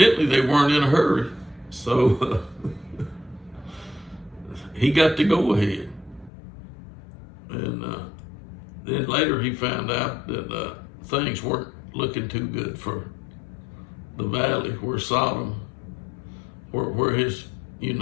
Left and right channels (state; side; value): drops out; right; at 6.3 s